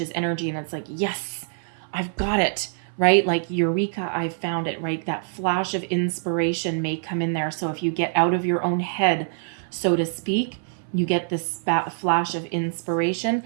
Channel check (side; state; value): left; silent; 61 dB below the other